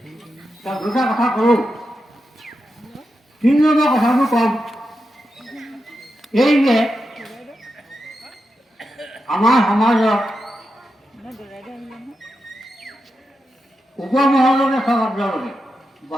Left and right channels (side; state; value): both; normal; correlation 0.88